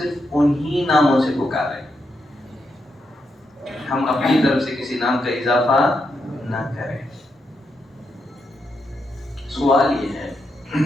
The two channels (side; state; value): both; normal; correlation 0.83